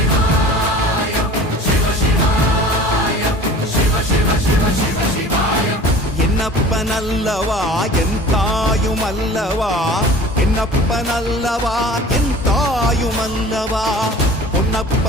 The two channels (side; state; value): both; normal; correlation 0.43